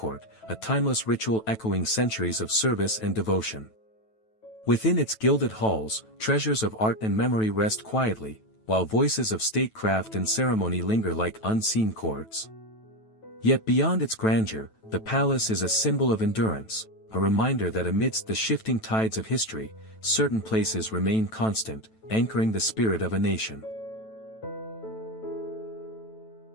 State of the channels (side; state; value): right; late; 9.2 ms